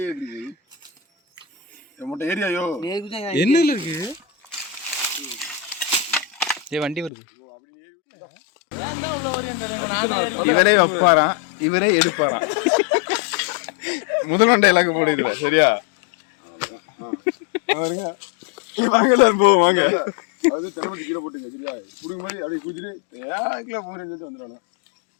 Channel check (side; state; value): right; drops out; at 7.1 s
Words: ஏரியாயோ என்ன இருக்கு வண்டி வருது. இவரே வைப்பாராம் இவரே எடுப்பாராம். முதல் டைலாக் போடுதுல சரியா வாங்க போவோம் வாங்க அது திறமை கீழே போட்டுங்க சரியா குடுக்கும் போது அப்படியே குதிரை ஏங்கில போறேன்னு சொல்லிட்டு வந்துடணும்.